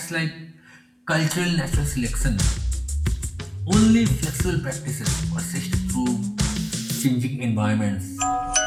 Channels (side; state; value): both; identical; correlation 1.00